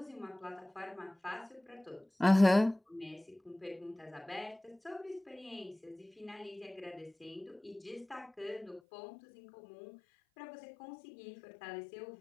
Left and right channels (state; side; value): drops out; right; at 8.8 s